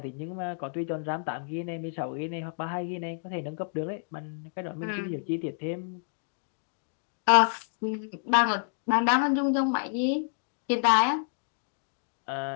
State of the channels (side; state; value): right; silent; digital silence